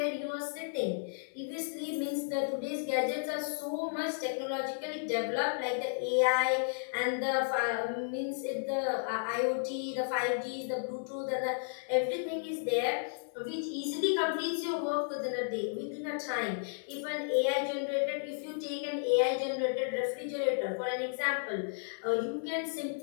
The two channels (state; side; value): silent; right; 56 dB below the other